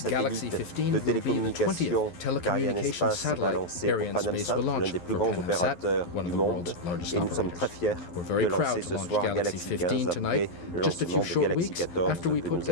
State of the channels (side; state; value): right; late; 11 ms